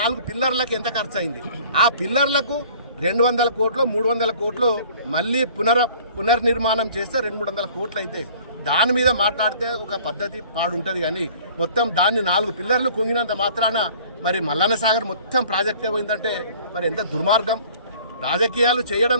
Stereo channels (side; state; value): both; inverted; correlation -0.51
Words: పిల్లర్లకు ఎంత ఖర్చు అయింది, ఆ పిల్లర్లకు 200 కోట్లు 300 కోట్లు మళ్ళీ పునర్నిర్మాణం చేస్తే 200-300 కోట్లు అవుతాయి. దాని మీద మాట్లాడితే ఒక పద్ధతి పాడుంటుంది. కానీ మొత్తం దాన్ని 4 పిల్లర్లు కుంగినంత మాత్రాన మరి మల్లన్న సాగర్ మొత్తం ప్రాజెక్టే పోయిందంటే మరి ఎంత దుర్మార్గం. రాజకీయాలు చేయడం